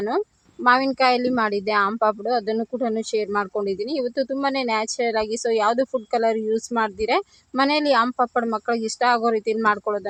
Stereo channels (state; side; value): identical; both; correlation 1.00